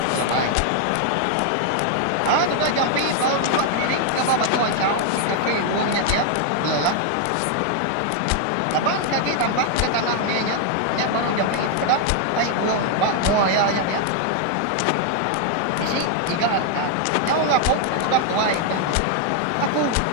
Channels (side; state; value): both; different; correlation 0.00